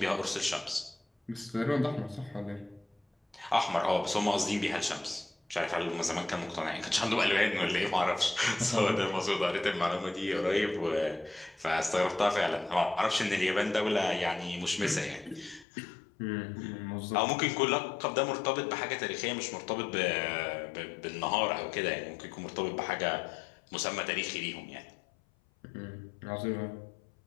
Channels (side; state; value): right; drops out; at 15.7 s